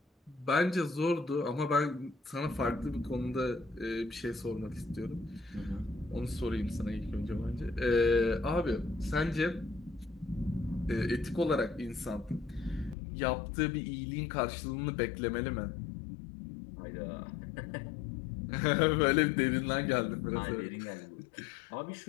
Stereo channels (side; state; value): right; drops out; at 13.0 s